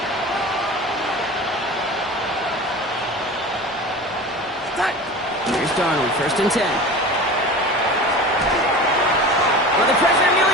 Here's Darnold, 1st and 10. Well, the pressure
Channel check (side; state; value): both; normal; correlation 0.34